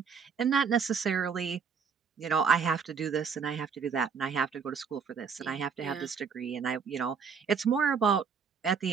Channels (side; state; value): left; quieter; 6.1 dB